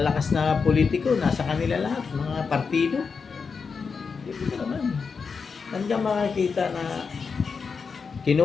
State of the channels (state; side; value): quieter; right; 5.4 dB